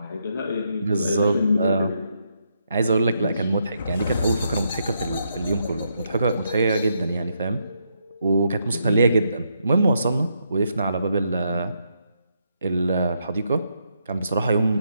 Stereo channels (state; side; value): inverted; both; correlation -0.79